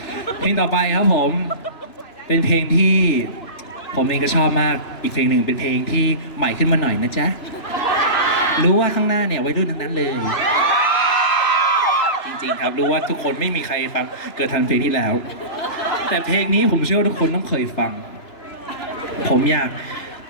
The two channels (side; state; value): right; late; 3.0 ms